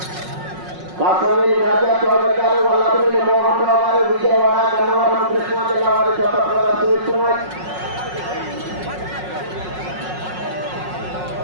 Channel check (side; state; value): left; late; 5.5 ms